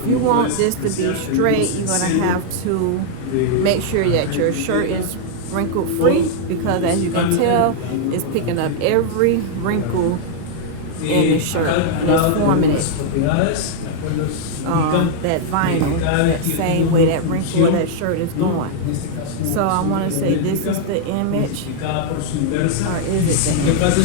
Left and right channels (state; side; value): different; both; correlation -0.01